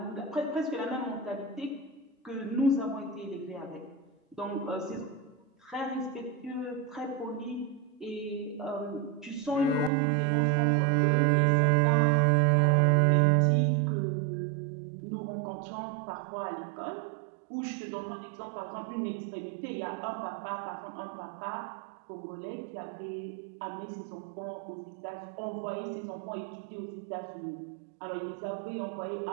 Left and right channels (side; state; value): left; drops out; at 9.9 s